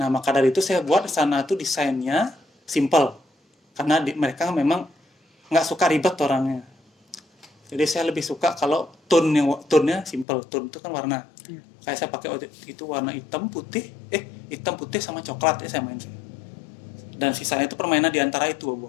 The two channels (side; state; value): right; drops out; at 10.2 s